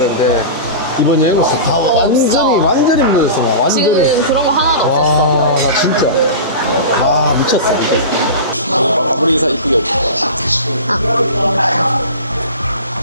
이번 여행으로서 다 완전히 무너졌어. 나 완전히. 지금 그런 거 하나도 없었어. 와, 나 진짜. 아, 미쳤어. 마무리 인사 이쁘게 없어.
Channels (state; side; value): inverted; both; correlation -0.31